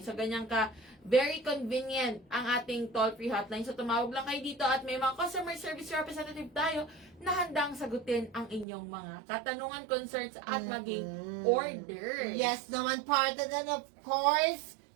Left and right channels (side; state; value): left; drops out; at 8.7 s